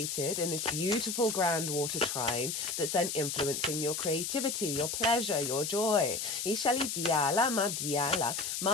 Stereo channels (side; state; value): left; noise; hiss, 3 dB below the sound